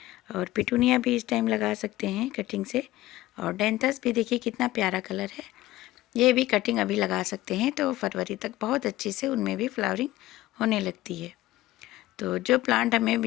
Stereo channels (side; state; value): right; quieter; 16.6 dB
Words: और पिटूनिया भी इस टाइम लगा सकते हैं कटिंग से। और डेंथस भी देखिए कितना प्यारा कलर है, ये भी कटिंग अभी लगा सकते हैं। तो फरवरी तक बहुत अच्छी से उनमें भी फ्लावरिंग होने लगती है। तो जो प्लांट हमें